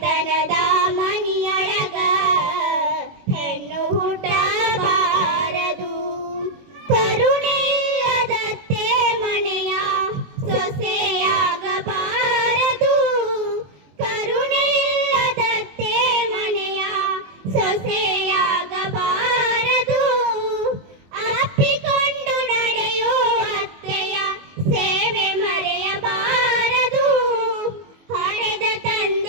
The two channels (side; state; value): left; late; 21 ms